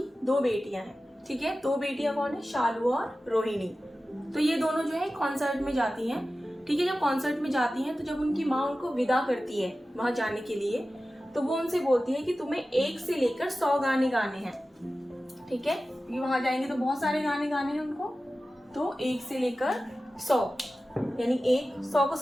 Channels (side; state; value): both; normal; correlation 0.95